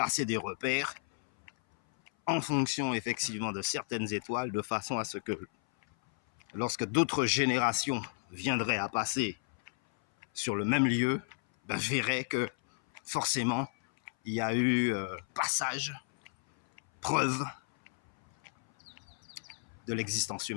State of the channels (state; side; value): silent; right; 56 dB below the other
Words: des repères en fonction effectivement de certaines étoiles, de façon à ce que lorsque d'autres générations viendraient à passer sur le même lieu, verraient que forcément il y a eu passage, preuve de l'existence